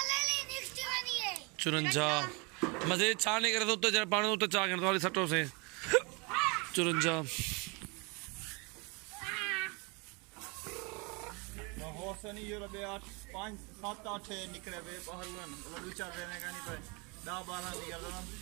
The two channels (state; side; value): quieter; left; 29.9 dB